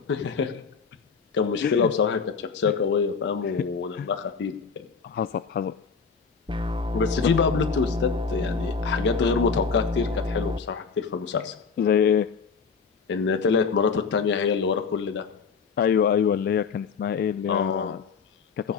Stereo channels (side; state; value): right; quieter; 5.5 dB